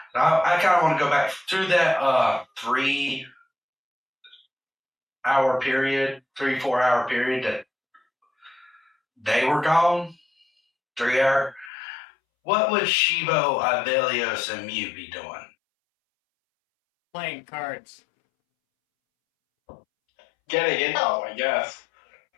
I kind of want to go back through that 3 hour period, 4 hour period that they were gone. 3 hour. What would Shivo, Ivellios, and Miuu be doing? Playing cards. Getting into them, I guess.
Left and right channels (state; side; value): drops out; right; at 11.7 s